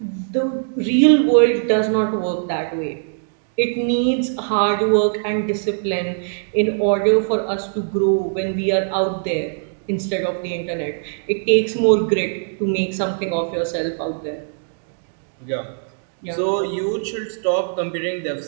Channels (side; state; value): left; silent; digital silence